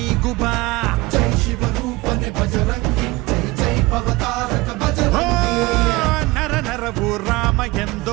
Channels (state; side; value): quieter; left; 21.8 dB